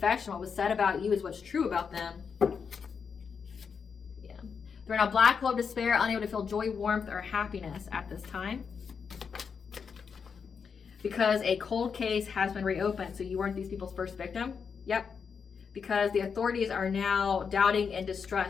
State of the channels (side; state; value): right; quieter; 6.1 dB